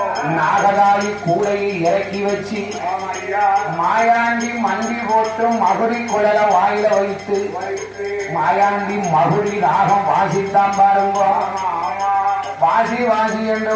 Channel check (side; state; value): both; identical; correlation 1.00